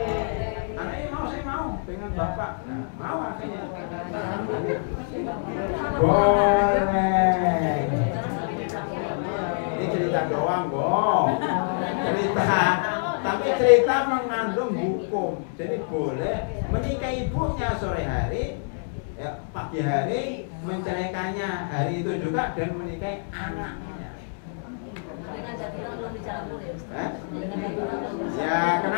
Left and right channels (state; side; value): silent; right; digital silence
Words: Anaknya mau, saya mau dengan bapak. Nah, mau akhirnya. Boleh. Ini cerita doang, Bong. Cerita. Tapi cerita mengandung hukum. Jadi boleh menikahi ibunya sore hari, ya, pagi hari menceraikannya hari itu juga, dan menikahi anaknya. Ya